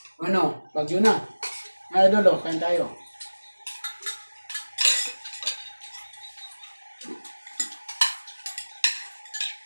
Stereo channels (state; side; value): inverted; both; correlation -1.00